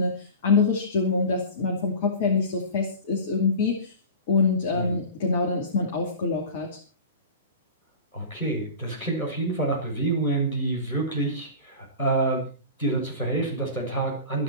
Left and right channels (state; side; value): inverted; both; correlation -0.34